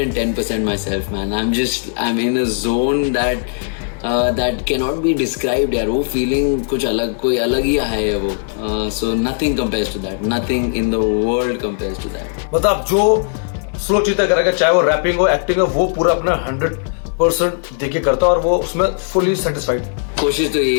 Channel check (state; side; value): silent; right; 63 dB below the other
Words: myself, man. I'm in a zone that cannot be described यार. वो फीलिंग कुछ अलग, कोई अलग ही है वो. So nothing compares to that. Nothing in the world compares to that. मतलब जो स्लो चीता करेगा, चाहे वो रैपिंग हो, एक्टिंग हो, वो पूरा अपना 100% देके करता है और वो उसमें फुली सेटिस्फाइड. कोशिश तो